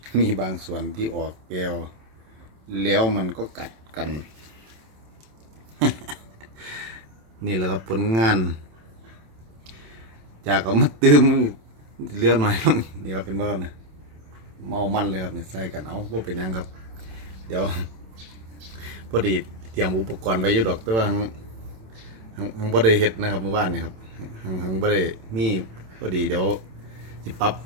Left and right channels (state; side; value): late; left; 27 ms